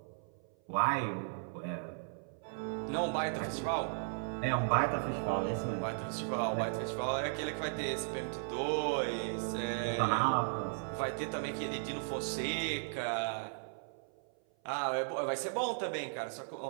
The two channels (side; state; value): left; silent; 54 dB below the other